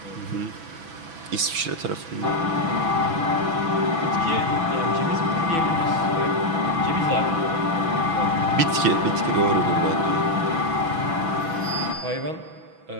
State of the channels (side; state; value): left; late; 6.1 ms